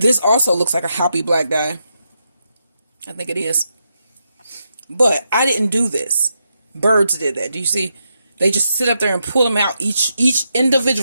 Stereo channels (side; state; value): both; inverted; correlation -0.83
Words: also looks like a hoppy black dye. I think it is. But I didn't do this. Birds did that. Do you see? They just sit up there and pull them out. Each